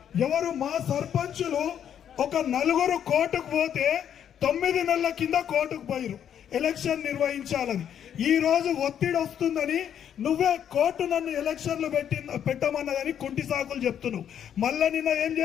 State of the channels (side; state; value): right; quieter; 9.2 dB